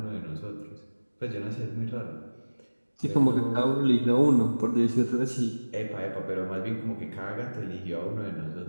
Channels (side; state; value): both; inverted; correlation -1.00